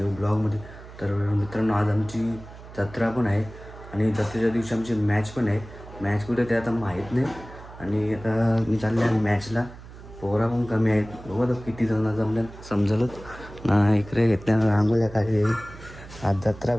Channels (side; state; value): right; noise; hum, 17 dB below the sound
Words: ब्लॉगमध्ये. तर मित्रांनो, आज आमची जत्रा पण आहे आणि जत्रेच्या दिवशी आमची मॅच पण आहे. मॅच कुठे ते आता माहीत नाही आणि आता मी चालले आहे मॅचला. पोरा पण कमी आहेत, बघू आता किती जण जमल्या समजलंच ना. इकडे घेतल्या रांगोळ्या काय आज जत्रा